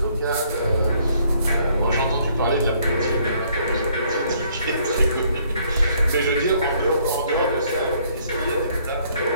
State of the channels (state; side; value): inverted; both; correlation -0.65